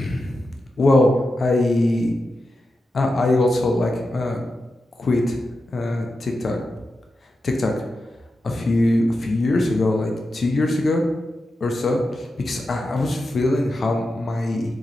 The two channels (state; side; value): normal; both; correlation 0.90